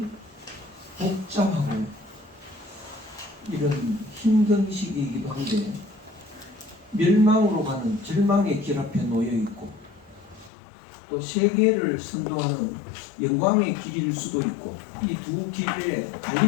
복잡하고 이런 힘든 시기이기도 한데 멸망으로 가는 절망의 길 앞에 놓여 있고 또 세계를 선도하는 영광의 길일 수도 있고 이 두 길의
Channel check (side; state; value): right; drops out; at 10.5 s